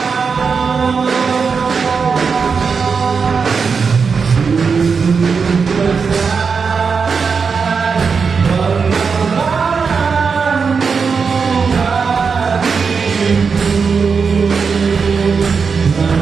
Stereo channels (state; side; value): quieter; left; 5.5 dB